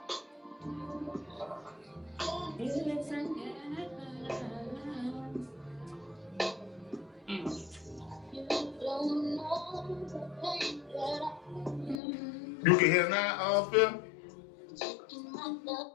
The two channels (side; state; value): right; drops out; at 12.0 s